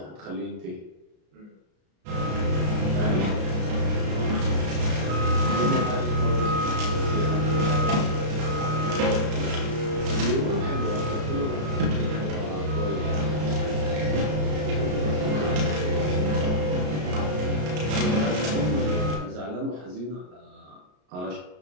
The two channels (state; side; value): late; left; 33 ms